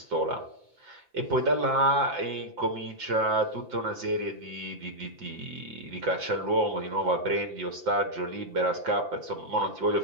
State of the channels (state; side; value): late; left; 5.9 ms